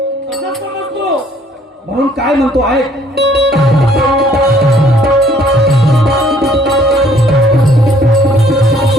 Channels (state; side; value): normal; both; correlation 0.60